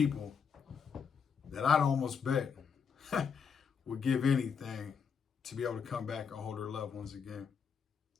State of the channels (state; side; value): quieter; right; 6.4 dB